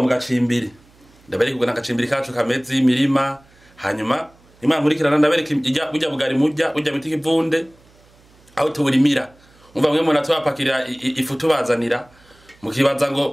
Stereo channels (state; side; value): noise; right; hum, 29 dB below the sound